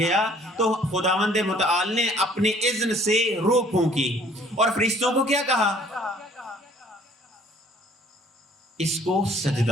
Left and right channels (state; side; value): normal; both; correlation 0.57